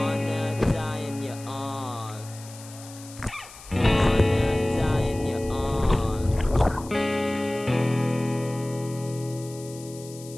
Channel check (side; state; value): left; noise; hiss, 18 dB below the sound